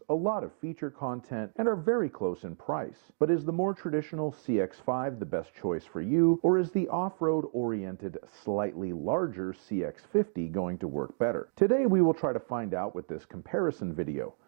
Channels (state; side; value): silent; left; digital silence